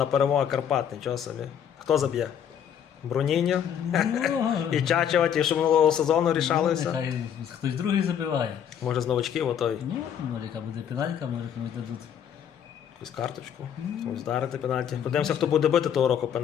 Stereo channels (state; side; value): quieter; right; 8.9 dB